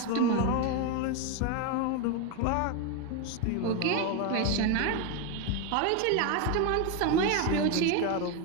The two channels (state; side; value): different; both; correlation 0.02